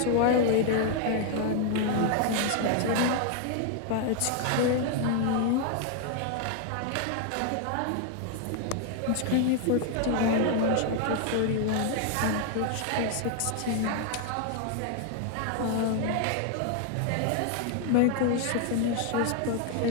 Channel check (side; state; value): both; different; correlation 0.00